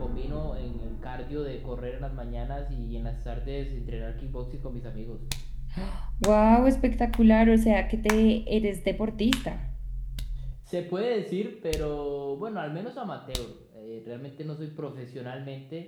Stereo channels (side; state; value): both; identical; correlation 1.00